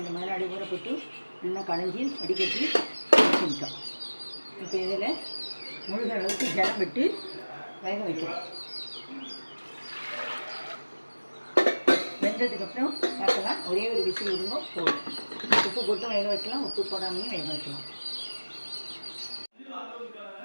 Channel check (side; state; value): both; inverted; correlation -1.00